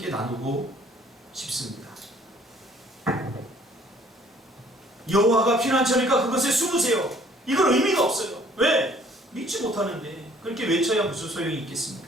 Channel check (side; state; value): both; normal; correlation 0.58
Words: 나누고 싶습니다. 여호와가 피난처니까 그것에 숨으세요. 이건 의미가 없어요. 왜? 믿지 못하는데 그렇게 외쳐야 무슨 소용이